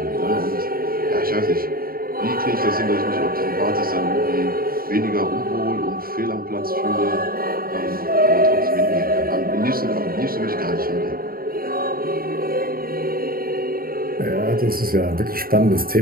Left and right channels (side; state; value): left; late; 0.43 ms